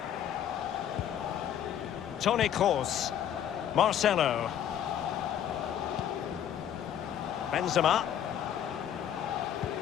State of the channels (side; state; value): right; quieter; 9.9 dB